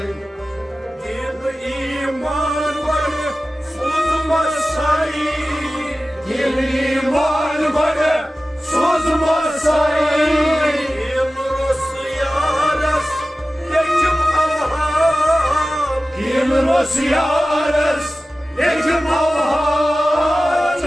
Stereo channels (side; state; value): both; normal; correlation 0.96